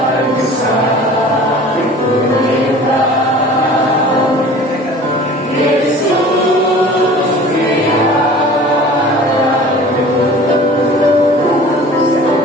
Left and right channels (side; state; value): both; normal; correlation 0.44